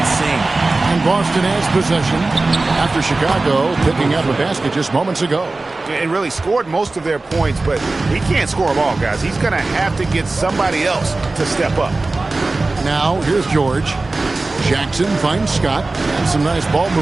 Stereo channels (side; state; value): left; quieter; 3.3 dB